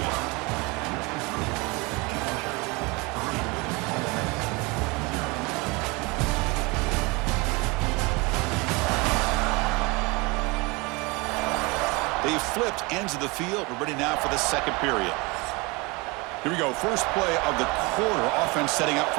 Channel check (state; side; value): quieter; left; 26.4 dB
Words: They've flipped ends of the field. We're ready now for the second period. Here we go, first play of the quarter. Offense setting up